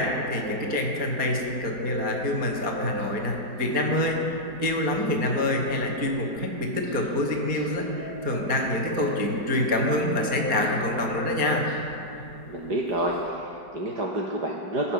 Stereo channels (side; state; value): left; late; 4.3 ms